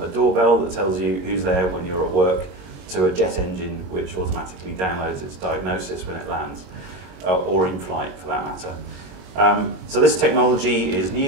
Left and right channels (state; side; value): late; left; 22 ms